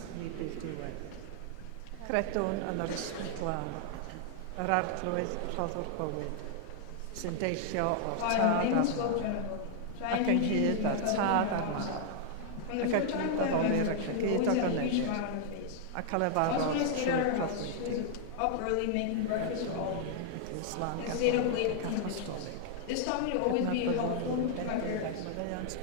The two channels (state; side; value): different; both; correlation 0.00